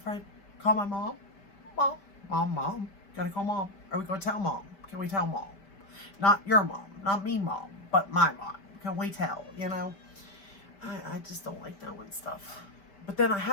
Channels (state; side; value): late; right; 5.1 ms